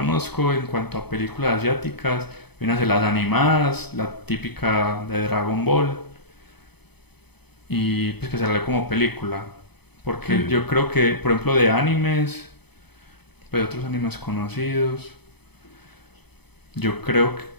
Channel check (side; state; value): right; late; 0.98 ms